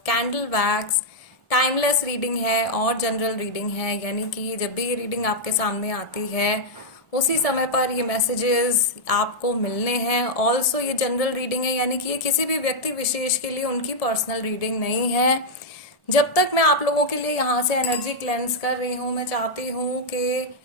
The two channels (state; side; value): late; right; 1.7 ms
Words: candle wax. Timeless reading है और जनरल रीडिंग है, यानी कि जब भी ये रीडिंग आपके सामने आती है उसी समय पर ये मैसेजेस आपको मिलने हैं। ऑल्सो ये जनरल रीडिंग है, यानी कि ये किसी भी व्यक्ति विशेष के लिए उनकी पर्सनल रीडिंग नहीं है। जब तक मैं आप लोगों के लिए यहाँ से एनर्जी क्लेंस कर रही हूँ, मैं चाहती हूँ कि